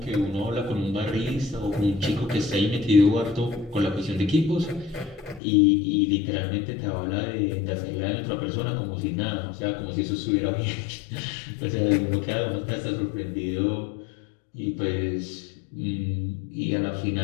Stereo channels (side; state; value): right; drops out; at 5.4 s